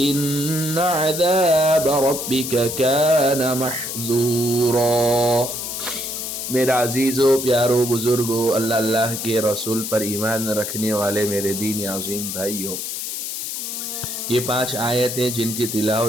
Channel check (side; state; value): left; noise; hiss, 5 dB below the sound